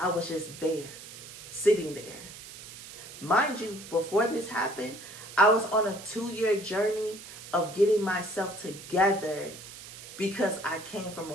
was just there, sitting there. Mind you, before this happened, I was on a 2-year journey of getting myself together because I came from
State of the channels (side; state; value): right; noise; hiss, 14 dB below the sound